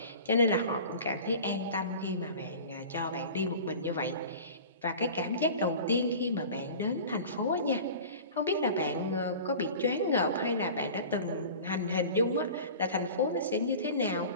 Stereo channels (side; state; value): both; inverted; correlation -0.39